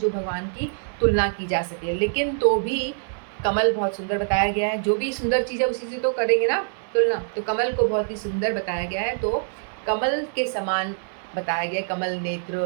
भगवान की तुलना की जा सके। लेकिन तो भी कमल बहुत सुंदर बताया गया है, जो भी सुंदर चीज़ है उसी से तो करेंगे ना तुलना, तो कमल को बहुत ही सुंदर बताया गया है। तो कमल के समान बताया गया, कमल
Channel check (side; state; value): left; silent; 62 dB below the other